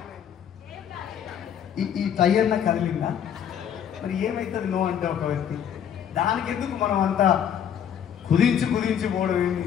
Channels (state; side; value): quieter; right; 8.9 dB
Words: ఈ టైర్న కదిలిందా? మరి ఏమవుతుంది నో అంటే ఒక వ్యక్తి? దానికి ఎందుకు మనం అంతా కుదించి పోవడం ఏంటి?